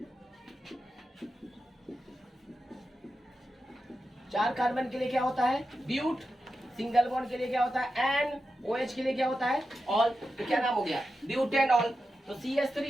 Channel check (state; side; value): normal; both; correlation 0.90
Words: चार कार्बन के लिए क्या होता है ब्यूट, सिंगल बॉन्ड के लिए क्या होता है एन, OH के लिए क्या होता है ऑल, तो क्या नाम हो गया ब्यूटेनॉल। तो